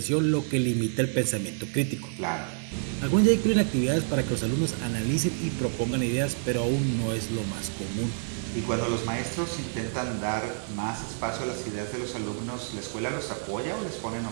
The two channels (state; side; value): silent; left; 57 dB below the other